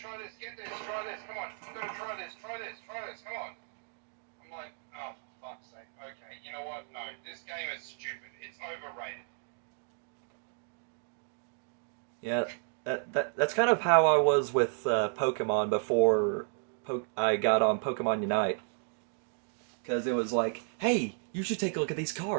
this, get this, try this, come on, you gotta try this, come on. I'm like, oh, for fuck's sake. Okay, you know what? No, this game is stupid. It's overrated. Yeah, that's kind of how I was with Pokemon before I got on Pokemon Unite. Because it was like, hey, you should take a look at these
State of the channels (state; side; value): silent; left; 56 dB below the other